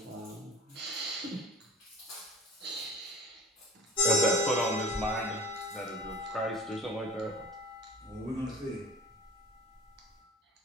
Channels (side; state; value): both; normal; correlation 0.44